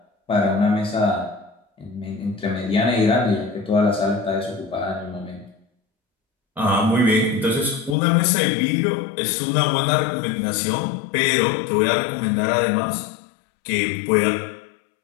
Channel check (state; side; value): drops out; right; at 8.0 s